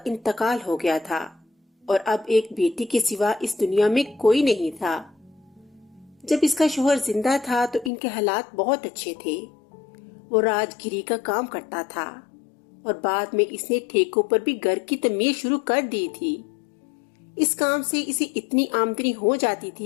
انتقال ہو گیا تھا اور اب ایک بیٹی کے سوا اس دنیا میں کوئی نہیں تھا۔ جب اس کا شوہر زندہ تھا تو ان کے حالات بہت اچھے تھے۔ وہ راج گیری کا کام کرتا تھا اور بعد میں اس نے ٹھیکوں پر بھی گھر کی تعمیر شروع کر دی تھی۔ اس کام سے اسے اتنی آمدنی ہو جاتی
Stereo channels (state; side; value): drops out; right; at 7.9 s